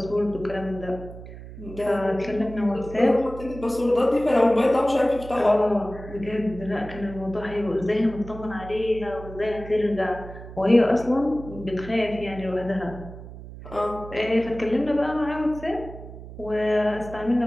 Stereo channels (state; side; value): noise; right; hum, 14 dB below the sound